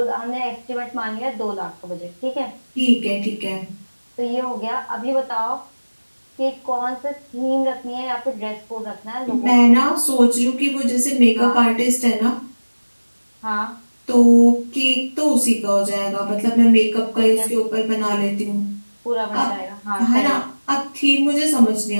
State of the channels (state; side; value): inverted; both; correlation -1.00